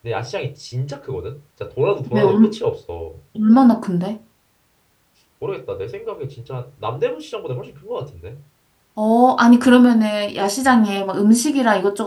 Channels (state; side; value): identical; both; correlation 1.00